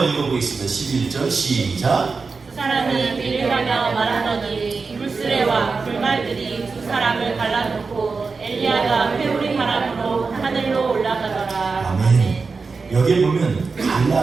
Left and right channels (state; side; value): quieter; left; 4.5 dB